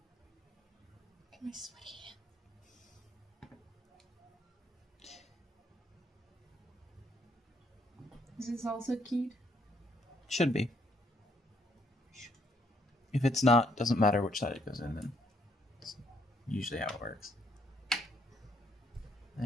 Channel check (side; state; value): both; normal; correlation 0.69